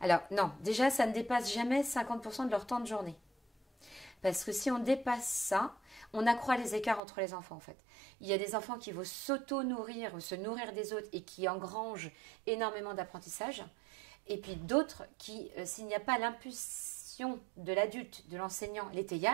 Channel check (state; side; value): drops out; left; at 7.0 s